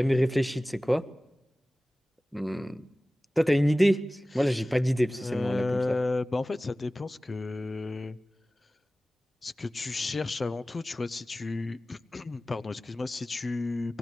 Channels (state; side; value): normal; both; correlation 0.97